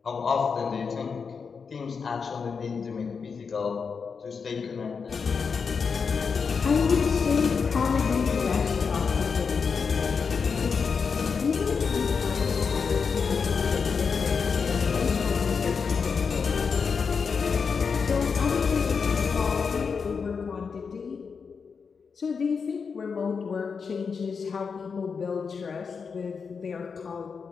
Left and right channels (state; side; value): quieter; right; 5.6 dB